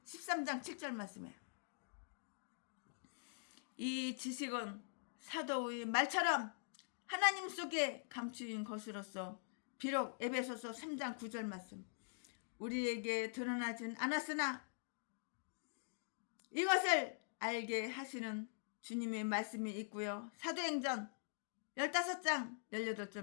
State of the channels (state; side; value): silent; right; digital silence